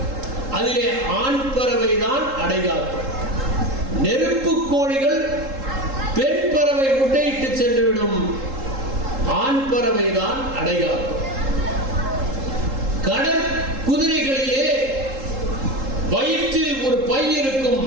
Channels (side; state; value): left; late; 3.8 ms